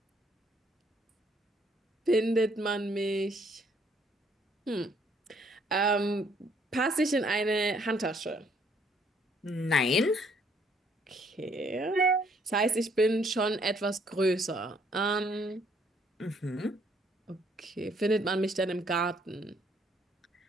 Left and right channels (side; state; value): both; normal; correlation 0.66